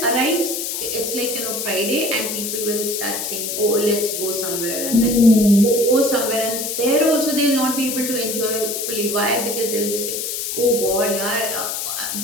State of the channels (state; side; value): noise; left; hiss, 3 dB below the sound